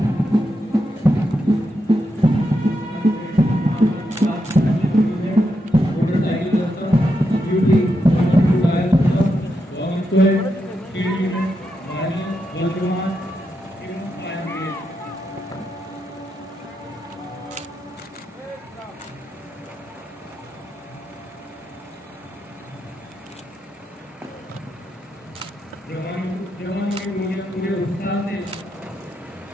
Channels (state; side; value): normal; both; correlation 0.84